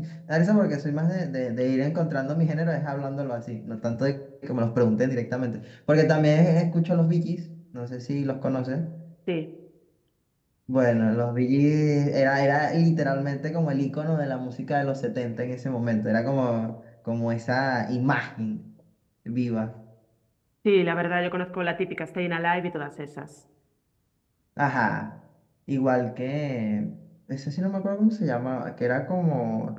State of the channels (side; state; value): both; identical; correlation 1.00